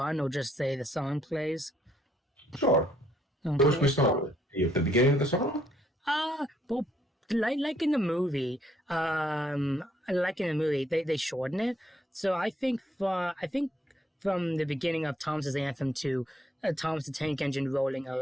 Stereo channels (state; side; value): normal; both; correlation 0.69